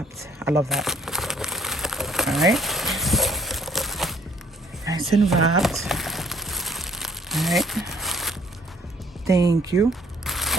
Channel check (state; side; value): normal; both; correlation 0.62